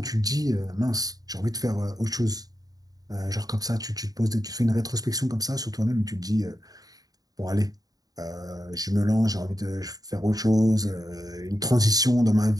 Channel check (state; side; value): late; left; 0.18 ms